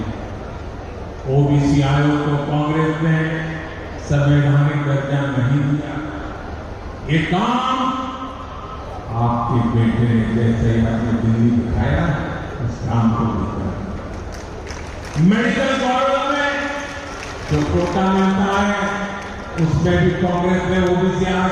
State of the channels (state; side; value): identical; both; correlation 1.00